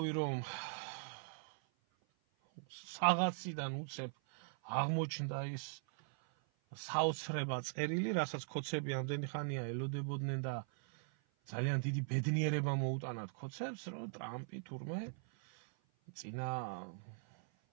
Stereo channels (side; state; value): left; silent; 51 dB below the other